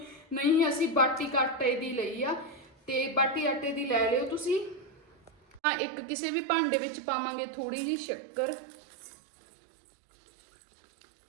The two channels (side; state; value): left; drops out; at 5.6 s